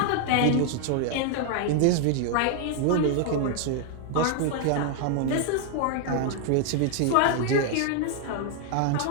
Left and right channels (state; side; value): different; both; correlation 0.00